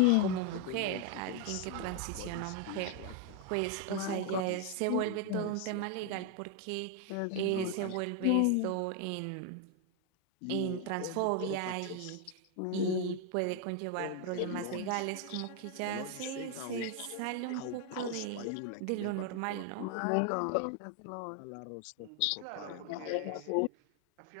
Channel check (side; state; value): both; different; correlation 0.01